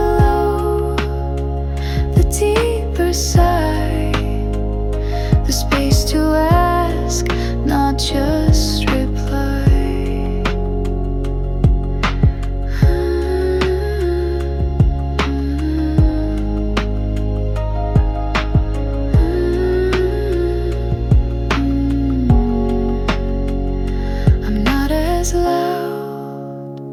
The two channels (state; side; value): identical; both; correlation 1.00